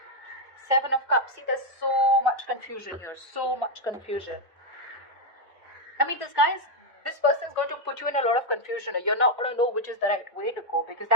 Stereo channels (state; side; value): normal; both; correlation 0.02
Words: Seven of Cups. See, there's so much confusion here. So much confusion. I mean, this person is going to put you in a lot of confusion. You're not going to know which is the right way to go because